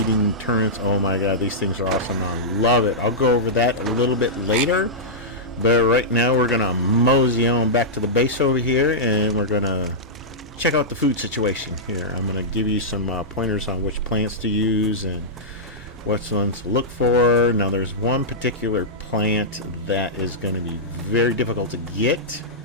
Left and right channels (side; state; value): both; normal; correlation -0.12